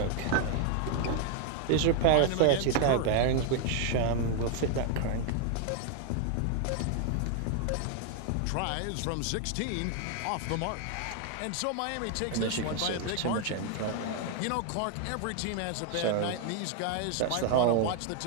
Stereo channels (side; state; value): both; different; correlation 0.00